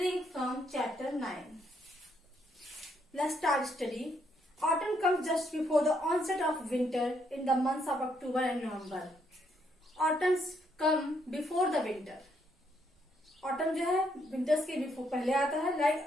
from chapter 9. Let's start study. Autumn comes just before the onset of winter in the months of October and November. Autumns come before the winter. Autumn जो है winters के before पहले आता है like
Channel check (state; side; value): normal; both; correlation 0.74